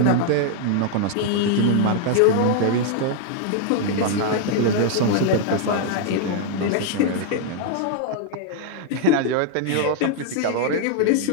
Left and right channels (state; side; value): different; both; correlation 0.00